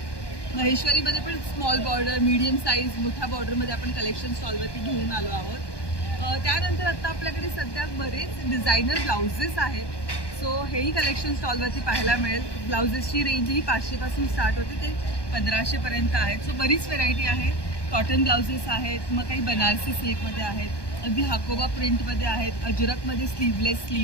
महेश्वरीमध्ये पण स्मॉल बॉर्डर, मीडियम साईज, मोठ्या बॉर्डरमध्ये आपण कलेक्शन स्टॉलवरती घेऊन आलो आहोत. त्यानंतर आता आपल्याकडे सध्या बरेच डिझायनर ब्लाउजेस आहेत. सो हेही कलेक्शन स्टॉलवरती पाहायला मिळेल. ब्लाउजेसची रेंज ही 500 पासून स्टार्ट होते ते 1500 पर्यंत आहेत. सो बरीच व्हेरायटी आहे. कॉटन ब्लाउजेस आहेत, मग काही बनारसी सिल्कमध्ये आहेत, अगदी हाकोबा प्रिंटमध्ये आहेत, अजरकमध्ये स्लीवलेस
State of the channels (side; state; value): right; late; 1.2 ms